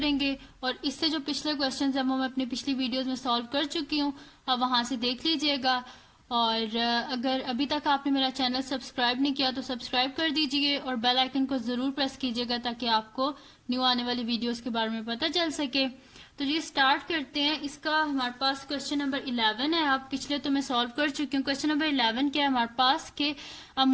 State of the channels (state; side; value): identical; both; correlation 1.00